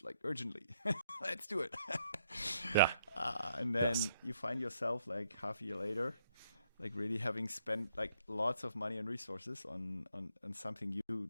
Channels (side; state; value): both; inverted; correlation -0.72